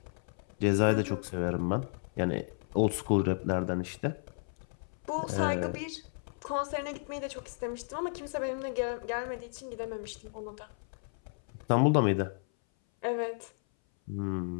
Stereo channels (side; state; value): right; silent; 56 dB below the other